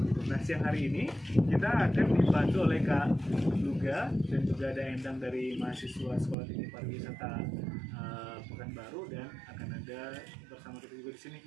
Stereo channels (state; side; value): drops out; left; at 6.4 s